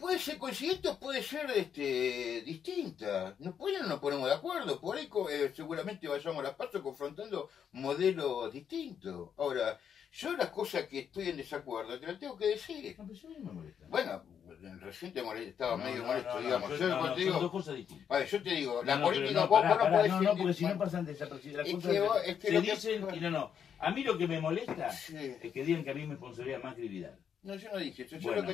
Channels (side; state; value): right; quieter; 8.0 dB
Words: ser coincidente o puede ser distinta. No nos ponemos de acuerdo, por ahí seguramente vayamos a las pasos confrontando modelos distintos. Ahora, yo las cosas que estoy en desacuerdo te las tengo que decir. No, pero eso a mí me molesta. Bueno, recién estaba medio molesto, digamos. Yo, Yo cuando te son digo, dos cosas distintas. a ver, yo te digo, la No, política, pero vos pará, no pará, podés no, decir- porque si no bueno, pasan desapercibidas. Las es cosas que se lo que- dicen y no. A mí lo que me molesta Sí. es que digan que a mí me sponsoría Macri y Vidal. No, yo no dije eso. Yo Bueno, lo que